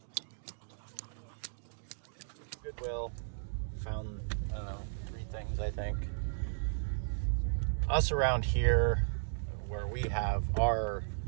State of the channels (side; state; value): left; silent; digital silence